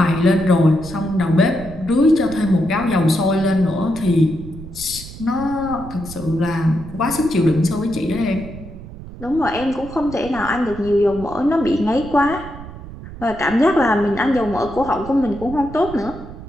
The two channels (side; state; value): right; noise; rumble, 14 dB below the sound